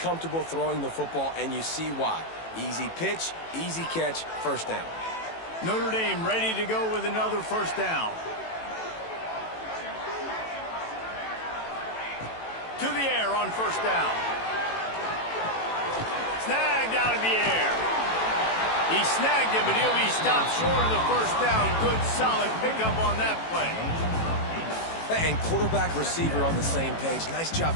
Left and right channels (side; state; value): right; late; 18 ms